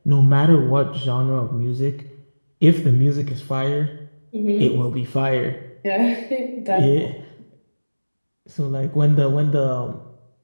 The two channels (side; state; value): both; inverted; correlation -1.00